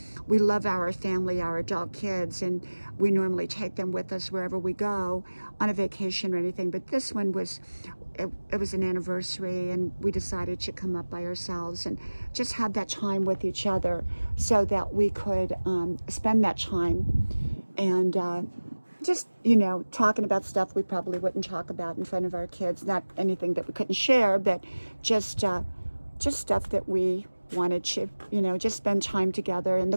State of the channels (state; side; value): inverted; both; correlation -1.00